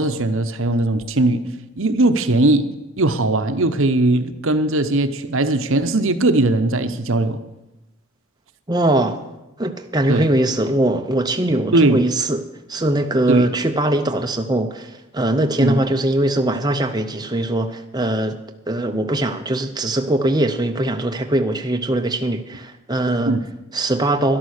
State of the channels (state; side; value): normal; both; correlation 0.56